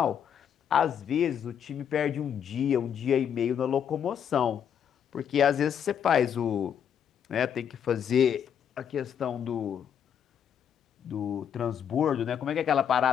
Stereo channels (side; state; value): right; quieter; 8.5 dB